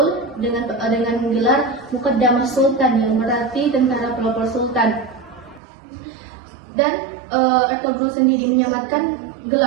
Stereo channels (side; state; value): left; drops out; at 5.6 s